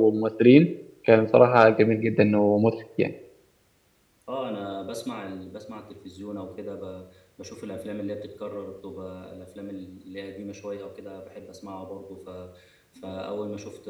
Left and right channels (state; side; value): identical; both; correlation 1.00